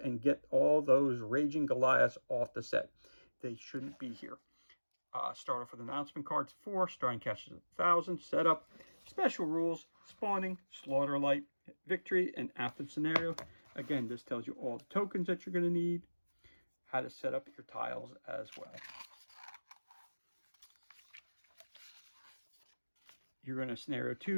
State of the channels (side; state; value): both; inverted; correlation -1.00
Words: and get all those raging Goliaths off the set. They shouldn't be here. Start off with announcement cards 4. Starting cash is 1,000. Setup. special rules, spawning, slaughter light, victory, and after the scenario. Again, this tells you all the tokens that you're going to need, how to set up your tiles as well. You're going to scenario